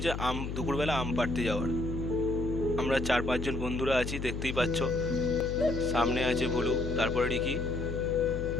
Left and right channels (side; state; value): left; noise; hum, 5 dB below the sound